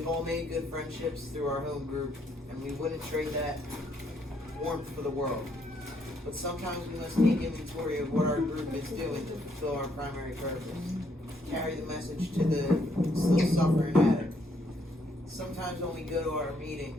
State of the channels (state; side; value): normal; both; correlation 0.71